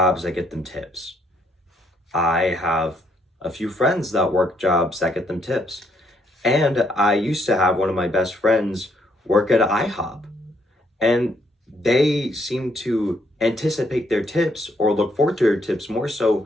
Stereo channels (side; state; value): both; normal; correlation 0.71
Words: that get them tips. I have a few friends that work jobs that get them tips. And I used to have one of my best friends work at IHOP. And they seem to anticipate their tips or look forward to their tips more so